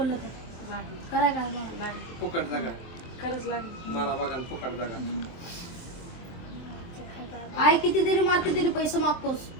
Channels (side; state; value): right; late; 23 ms